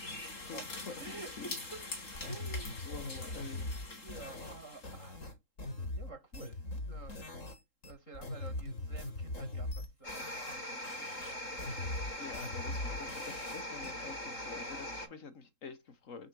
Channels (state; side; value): late; right; 3.8 ms